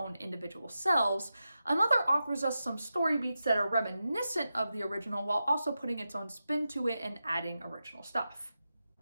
individual selves, another offers us some story beats that are reminiscent of the original while also putting its own spin to it and adding original stuff.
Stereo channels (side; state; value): both; inverted; correlation -0.90